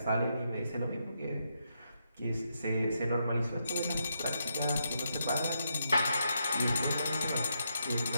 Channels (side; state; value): both; inverted; correlation -0.81